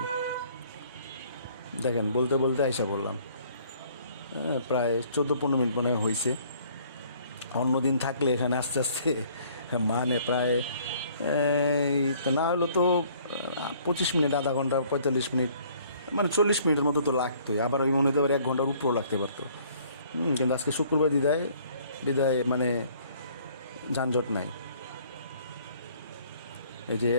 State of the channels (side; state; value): both; inverted; correlation -0.58